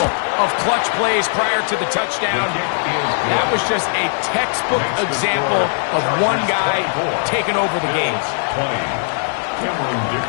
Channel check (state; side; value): silent; right; digital silence